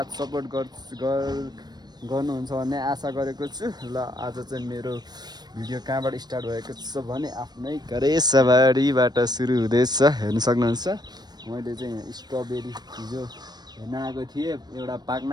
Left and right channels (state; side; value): late; left; 0.20 ms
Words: सपोर्ट गर्नुहुन्छ भन्ने आशा गरेको छु. ल आज चाहिँ मेरो भिडियो कहाँबाट स्टार्ट भएको छ भने आफ्नै घरेसबारीबाट सुरु हुँदैछ. हेर्न सक्नुहुन्छ. मैले चाहिँ यहाँ स्ट्रबेरी हिजो हेर्न आएको थिएँ. एउटा पाक्न